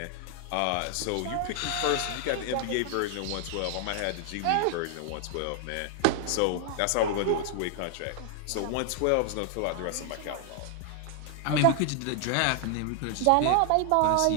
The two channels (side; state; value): both; different; correlation 0.00